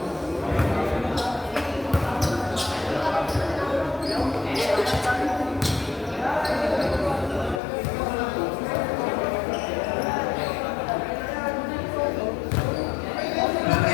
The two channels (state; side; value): drops out; right; at 7.6 s